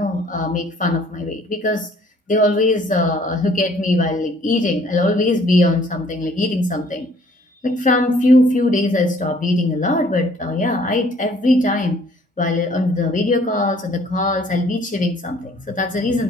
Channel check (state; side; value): normal; both; correlation 0.59